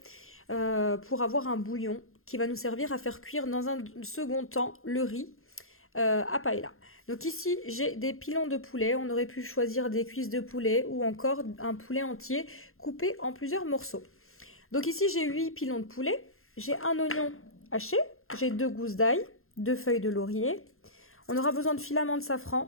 pour avoir un bouillon qui va nous servir à faire cuire dans un second temps le riz à paella. Donc ici, j'ai des pilons de poulet. On aurait pu choisir des cuisses de poulet ou encore un poulet entier coupé en plusieurs morceaux. Donc ici, j'ai 8 pilons de poulet. J'ai un oignon haché. J'ai 2 gousses d'ail, 2 feuilles de laurier. On aura besoin de filaments de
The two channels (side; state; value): right; late; 0.61 ms